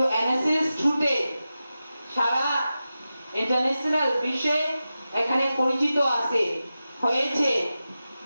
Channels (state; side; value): inverted; both; correlation -0.93